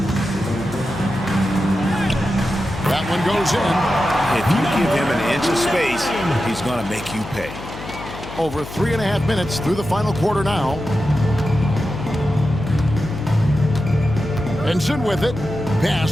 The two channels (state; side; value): noise; left; hum, 12 dB below the sound